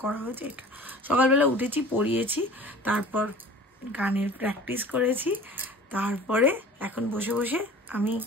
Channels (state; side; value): normal; both; correlation 0.43